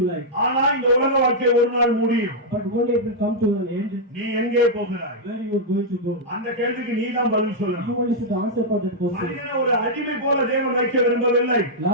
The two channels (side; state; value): both; normal; correlation -0.06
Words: like. ஆனா இந்த உலக வாழ்க்கை ஒரு நாள் முடியும். But one day it will come to an end. நீ எங்கே போகிறாய்? Where you are going to go? அந்த கேள்விக்கு நீ தான் பதில் You சொல்லணும். only should answer for that question. மனிதனை ஒரு அடிமை போல தேவன் வைக்க விரும்பவில்லை.